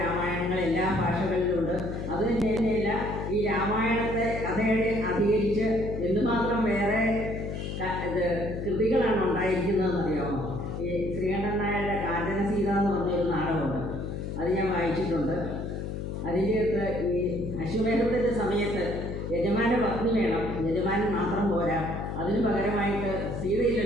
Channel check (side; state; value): left; noise; hum, 5 dB below the sound